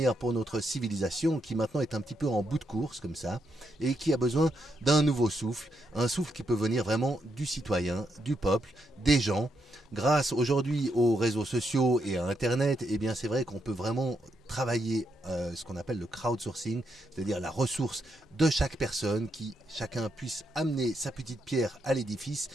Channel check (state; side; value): normal; both; correlation 0.80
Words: pour notre civilisation qui maintenant est un petit peu en bout de course comme ça et qui a besoin d'un nouveau souffle, un souffle qui peut venir vraiment du citoyen, du peuple, des gens. Grâce aujourd'hui aux réseaux sociaux et à Internet, eh bien c'est vrai qu'on peut vraiment travailler ce qu'on appelle le crowdsourcing, c'est-à-dire la ressource de chaque personne, qui chacun puisse amener sa petite pierre à l'édifice